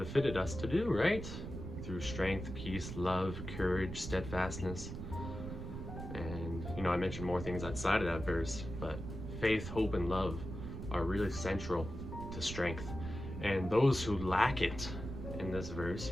us to do, right? Through strength, peace, love, courage, steadfastness. And, I mentioned more things outside of that verse, but faith, hope, and love are really central to strength. And those who lack it in this verse,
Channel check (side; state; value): right; noise; rumble, 8 dB below the sound